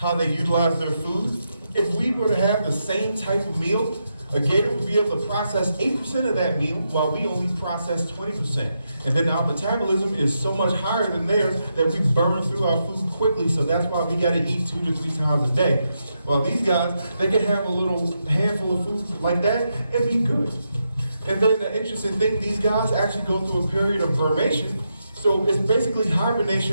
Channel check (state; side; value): inverted; both; correlation -0.84